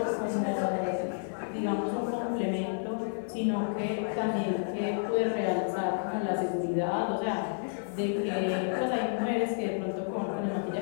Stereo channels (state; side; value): silent; right; 57 dB below the other